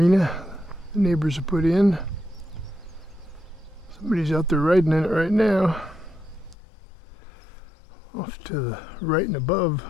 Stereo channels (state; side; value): drops out; right; at 6.6 s